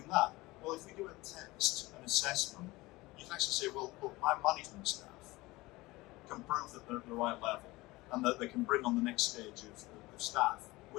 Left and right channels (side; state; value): right; quieter; 20.6 dB